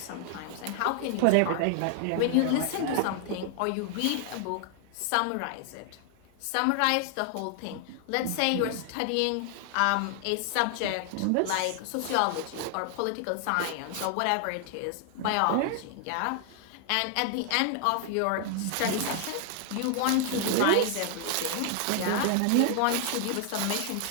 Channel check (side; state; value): both; different; correlation 0.00